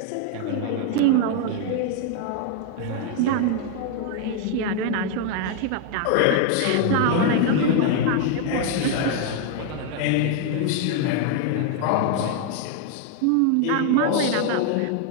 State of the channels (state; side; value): different; both; correlation 0.00